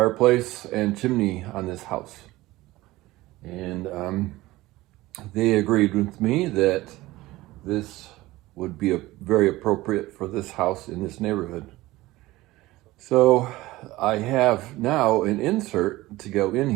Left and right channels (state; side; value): quieter; left; 18.3 dB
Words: and chimney on this house. And they agreed with me that this would be very appropriate for this house in this neighborhood. So I have now an insert to go in